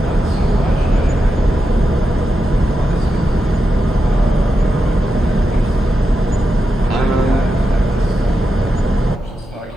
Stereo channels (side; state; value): both; normal; correlation 0.88